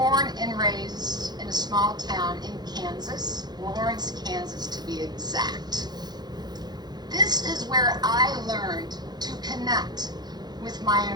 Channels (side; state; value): left; late; 0.20 ms